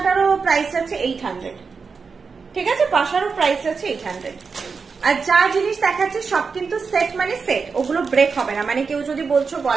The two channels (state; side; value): quieter; left; 5.1 dB